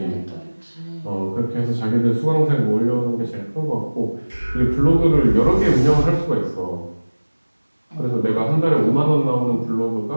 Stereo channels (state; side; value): inverted; both; correlation -1.00